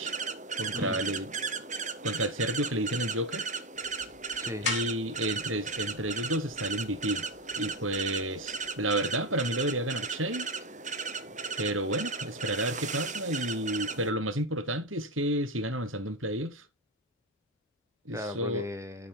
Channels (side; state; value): both; normal; correlation 0.12